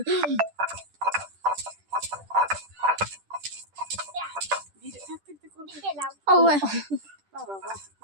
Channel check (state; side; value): late; left; 10 ms